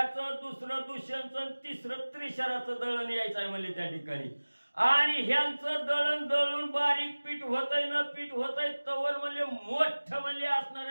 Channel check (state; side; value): inverted; both; correlation -1.00